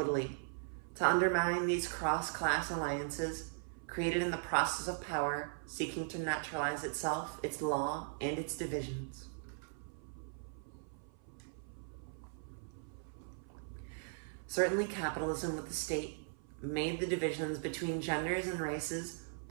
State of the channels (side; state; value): left; silent; 52 dB below the other